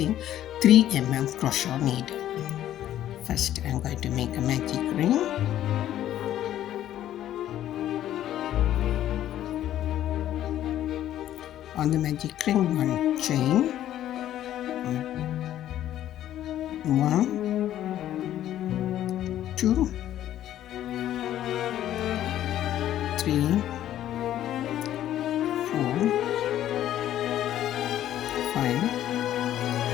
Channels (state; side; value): quieter; right; 12.2 dB